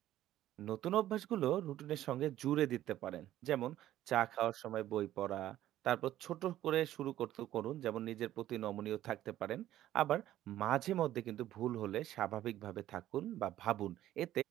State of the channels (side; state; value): left; quieter; 13.3 dB